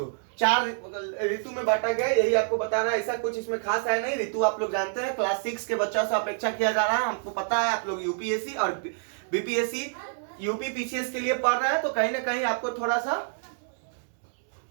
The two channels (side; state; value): left; silent; digital silence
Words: 4 ऋतु में बांटा गया। यही आपको बता रहा है, ऐसा कुछ इसमें खास है नहीं। ऋतु आप लोग जानते हैं, क्लास 6 के बच्चों से अपेक्षा किया जा रहा है, हमको पता है। आप लोग यूपीएससी और बीपीएससी, यूपी पीसीएस के लिए पढ़ रहे हैं, तो कहीं ना कहीं आपको थोड़ा सा